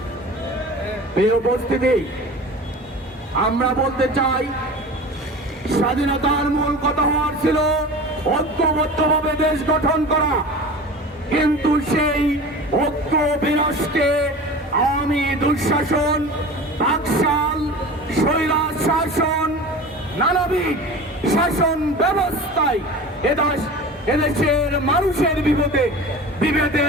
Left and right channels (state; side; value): normal; both; correlation 0.36